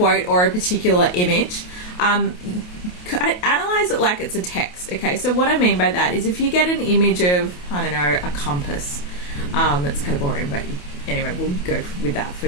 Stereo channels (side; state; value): right; late; 28 ms